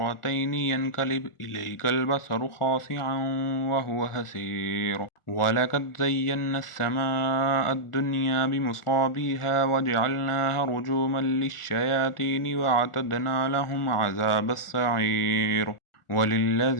ينقلب إليك البصر خاسعا وهو حسير ولقد زينا السماء الدنيا بمصابيها وجعلناها رجوما للشياطين وأعتدنا لهم عذاب السعير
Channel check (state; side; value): late; right; 1.4 ms